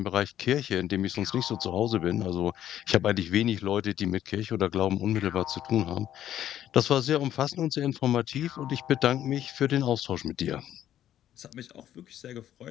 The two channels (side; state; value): right; quieter; 11.4 dB